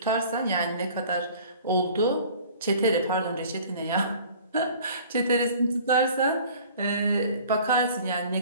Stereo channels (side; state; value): both; inverted; correlation -0.48